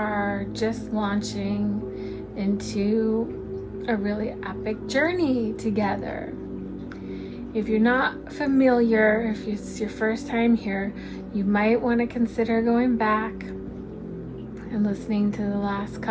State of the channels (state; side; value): identical; both; correlation 1.00